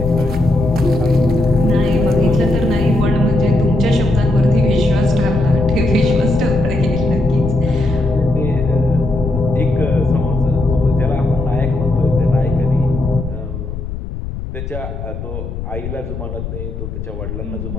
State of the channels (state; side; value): noise; left; rumble, 7 dB below the sound